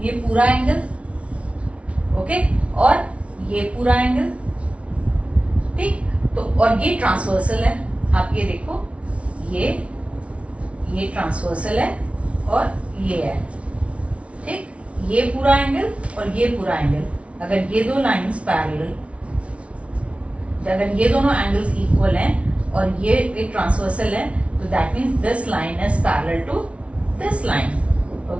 ये पूरा एंगल. ओके, और ये पूरा एंगल. ठीक, तो और ये ट्रांसवर्सल है. आप ये देखो, ये ट्रांसवर्सल है और ये है. ठीक, ये पूरा एंगल और ये पूरा एंगल. अगर ये दो लाइंस पैरेलल, अगर ये दोनों एंगल्स इक्वल हैं और ये एक ट्रांसवर्सल है, तो that means this line is parallel to this line.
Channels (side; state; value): left; late; 0.062 ms